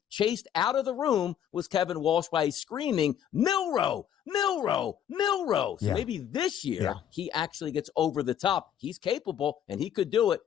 chased out of the room was Kevin Walsh by screaming, Milroe, Milroe, Milroe. So maybe this year he actually gets over the top. He's capable, and he could do it,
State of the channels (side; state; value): right; quieter; 9.6 dB